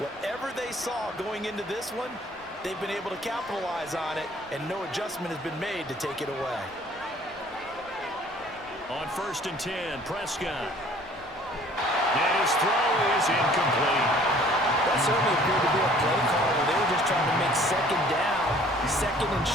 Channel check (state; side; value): normal; both; correlation 0.54